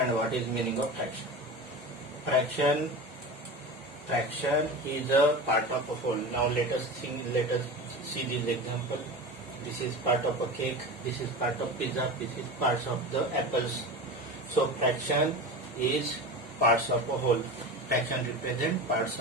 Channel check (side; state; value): both; normal; correlation 0.29